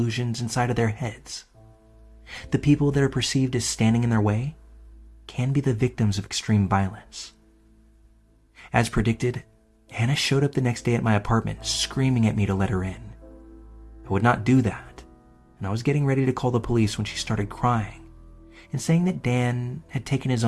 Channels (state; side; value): identical; both; correlation 1.00